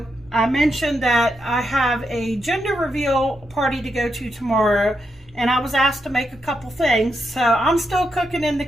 I mentioned that I have a gender reveal party to go to tomorrow, and I was asked to make a couple things, so I'm still cooking in the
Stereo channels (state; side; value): normal; both; correlation 0.83